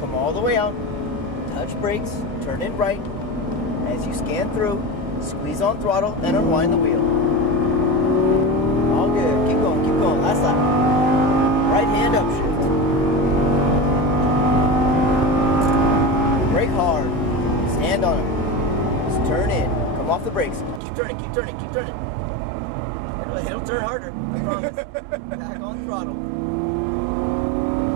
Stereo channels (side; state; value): left; drops out; at 20.8 s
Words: all the way out. Touch brakes, turn in right. As you scan through, squeeze on throttle, and unwind the wheel. All good. Keep going, keep going. Last lap. Right hand upshift. Brake hard. Stand on it. Just turn in. Come off the brakes. Keep turning, keep turning, keep turning. It'll turn harder, I promise. Back on throttle.